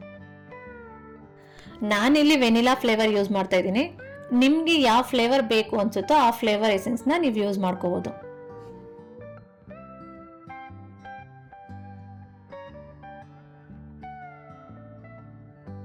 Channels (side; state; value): both; identical; correlation 1.00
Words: ನಾನಿಲ್ಲಿ ವೆನಿಲಾ ಫ್ಲೇವರ್ ಯೂಸ್ ಮಾಡ್ತಾ ಇದ್ದೀನಿ. ನಿಮ್ಗೆ ಯಾವ ಫ್ಲೇವರ್ ಬೇಕು ಅನ್ಸುತ್ತೋ ಆ ಫ್ಲೇವರ್ ಎಸೆನ್ಸ್ನ ನೀವು ಯೂಸ್ ಮಾಡ್ಕೋಬಹುದು.